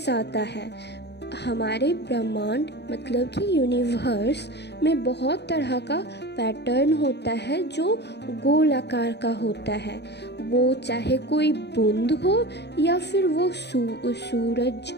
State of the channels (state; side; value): late; right; 0.49 ms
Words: है। हमारे ब्रह्मांड मतलब कि यूनिवर्स में बहुत तरह का पैटर्न होता है जो गोल आकार का होता है। वो चाहे कोई बूंद हो या फिर वो